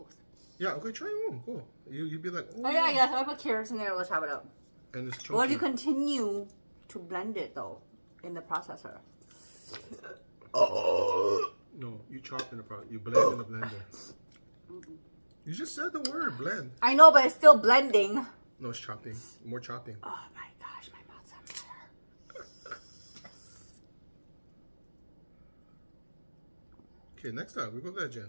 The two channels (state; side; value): inverted; both; correlation -1.00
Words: Yeah, okay, try one. Cool. You'd be like, Oh yeah, yes. I put carrots in there. Let's chop it up. And it's chunky. Well, you continue to blend it though in the processor. No, you chop in the you blend in the blender. You just said the word blend. I know, but it's still blending. No, it's chopping. More chopping. Oh my gosh, my mouth's on fire. Okay, next time we go there, Jen.